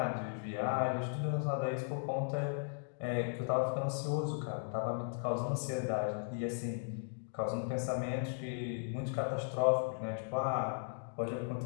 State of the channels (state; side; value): silent; right; digital silence